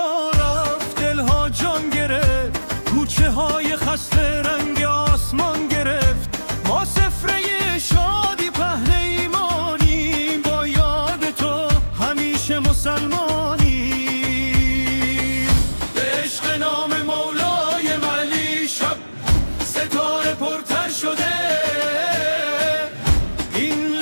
رفت دلها جان گرفت، کوچه های خسته رنگ آسمان گرفت. ما سفره شادی پهن ایمانیم، با یاد تو همیشه مسلمانیم. به عشق نام مولای علی شب ستاره پرتر شده، این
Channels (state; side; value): inverted; both; correlation -1.00